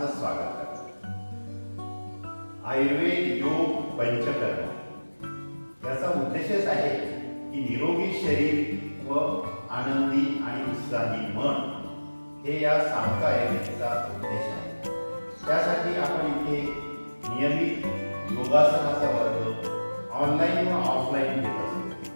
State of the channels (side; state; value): both; inverted; correlation -1.00